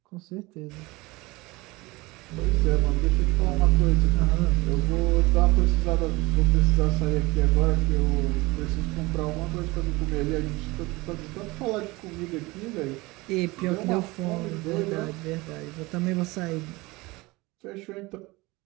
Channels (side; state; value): left; quieter; 22.3 dB